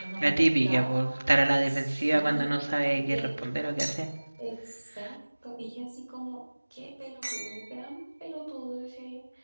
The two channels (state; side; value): inverted; both; correlation -1.00